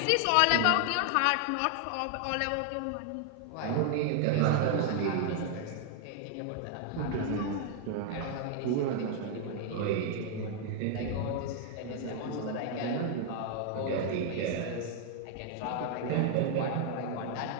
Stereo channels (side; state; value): both; different; correlation 0.00